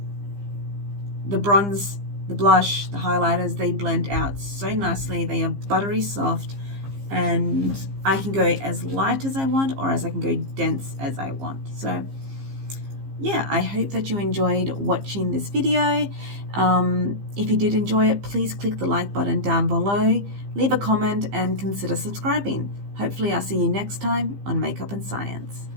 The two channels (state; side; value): late; left; 15 ms